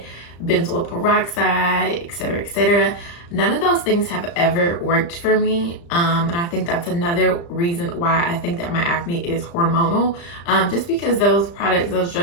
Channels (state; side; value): late; right; 35 ms